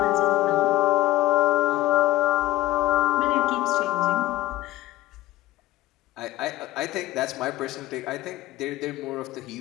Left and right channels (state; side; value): quieter; right; 16.4 dB